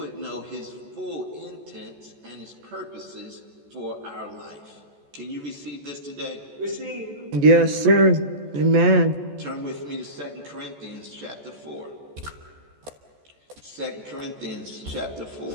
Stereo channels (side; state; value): left; late; 14 ms